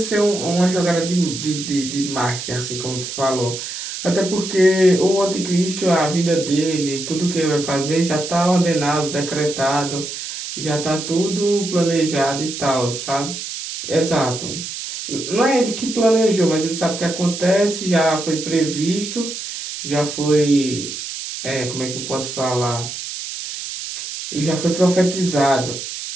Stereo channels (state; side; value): noise; right; hiss, 7 dB below the sound